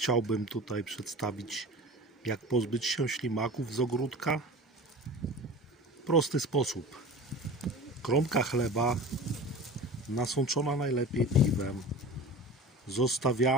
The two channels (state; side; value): normal; both; correlation 0.35